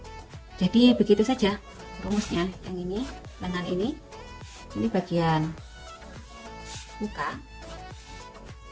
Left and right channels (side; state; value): both; identical; correlation 1.00